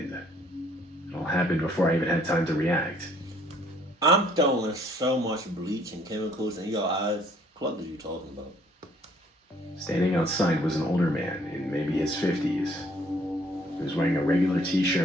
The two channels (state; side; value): normal; both; correlation 0.61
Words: It all happened before I even had time to react. I'm throwing so much bleach and chemicals in your eyes. What are you talking about? Standing outside was an older man in maybe his 50s. He was wearing a regular